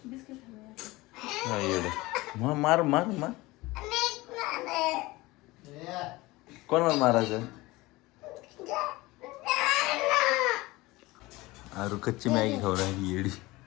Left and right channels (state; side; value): quieter; right; 20.7 dB